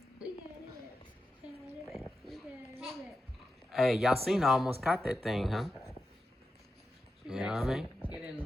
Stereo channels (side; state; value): both; normal; correlation 0.89